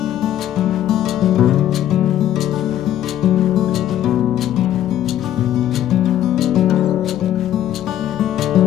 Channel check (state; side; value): quieter; right; 11.8 dB